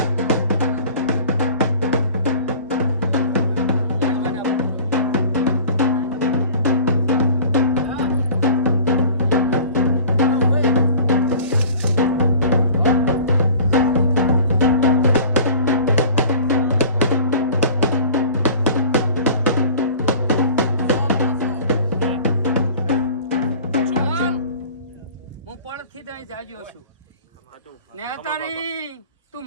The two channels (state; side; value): inverted; both; correlation -0.44